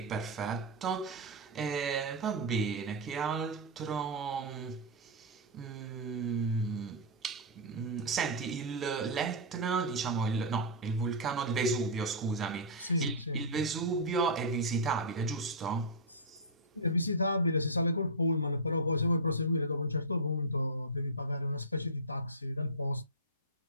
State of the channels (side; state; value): both; normal; correlation -0.10